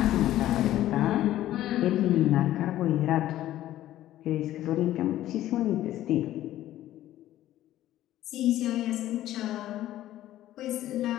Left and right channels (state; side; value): quieter; right; 13.7 dB